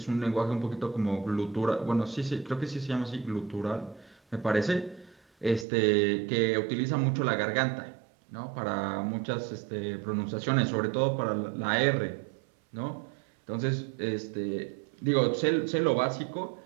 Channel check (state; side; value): drops out; left; at 5.7 s